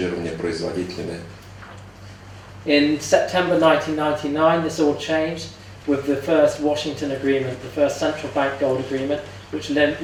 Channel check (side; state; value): both; identical; correlation 1.00